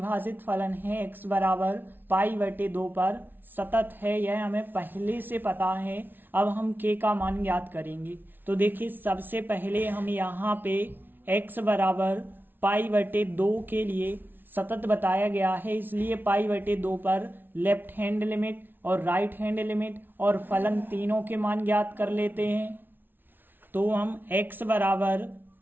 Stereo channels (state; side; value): late; left; 0.096 ms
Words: फलन है x बराबर π/2 पर सतत है, यह हमें पहले से पता है। अब हम k का मान ज्ञात करेंगे। तो देखिए, सबसे पहले हम यहाँ पे x बराबर π/2 के लिए सतत बताया गया है, इसलिए π/2 पर लेफ्ट हैंड लिमिट और राइट हैंड लिमिट और फलन तीनों के मान ज्ञात कर लेते हैं। तो हम x बराबर